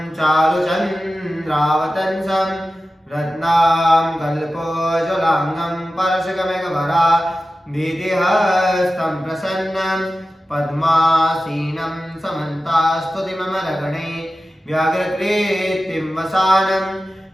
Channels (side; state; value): both; normal; correlation 0.94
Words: चारुचन्द्रावतंसं रत्नां कल्पोज्ज्वलांगं परशुकमेघवरा दीतिहस्तं प्रसन्नं पद्मासीनं समन्तास्तुतिममरगणे व्याघ्रकृतिं वसानं